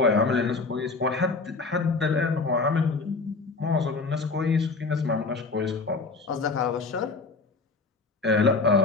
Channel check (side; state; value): right; quieter; 4.0 dB